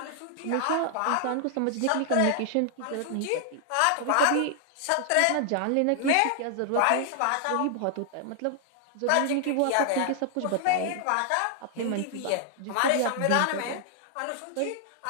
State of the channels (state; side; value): different; both; correlation 0.00